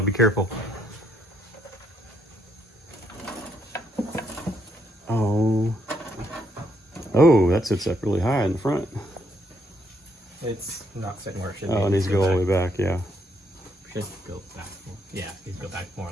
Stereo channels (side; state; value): both; normal; correlation 0.74